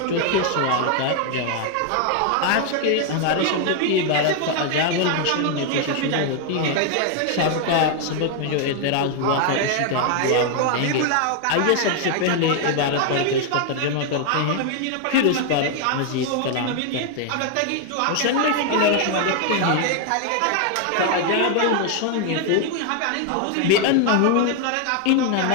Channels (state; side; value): different; both; correlation 0.00